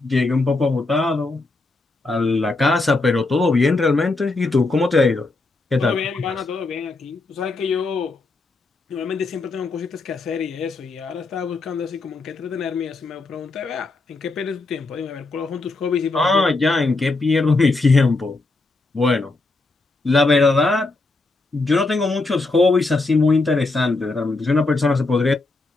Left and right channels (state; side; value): quieter; right; 3.4 dB